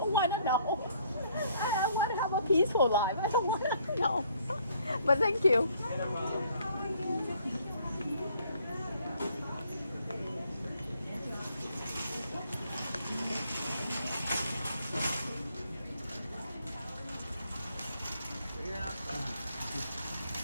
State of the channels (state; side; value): inverted; both; correlation -0.64